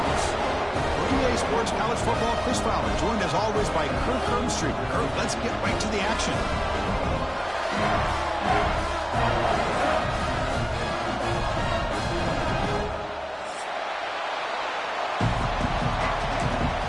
For EA Sports College Football, Chris Fowler, joined as always by Kirk Herbstreit. Kirk, let's get right to the action.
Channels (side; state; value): both; identical; correlation 1.00